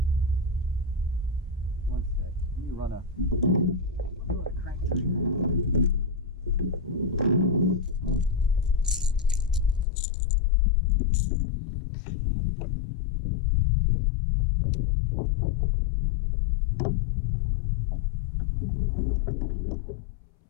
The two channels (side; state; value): right; drops out; at 9.9 s